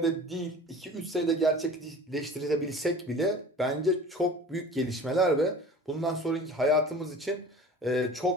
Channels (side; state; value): both; normal; correlation 0.41